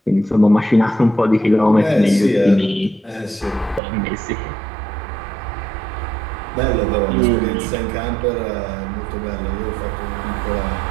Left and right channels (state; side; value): drops out; left; at 3.8 s